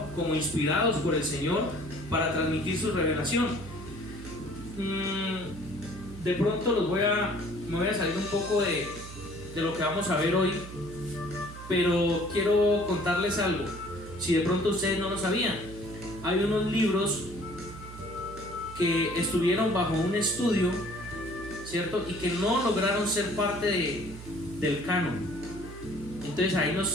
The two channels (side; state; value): right; noise; hum, 13 dB below the sound